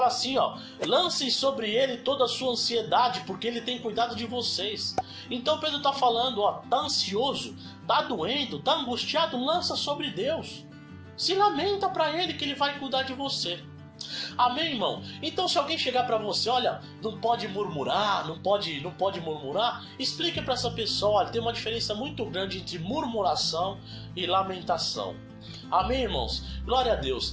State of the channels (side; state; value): both; identical; correlation 1.00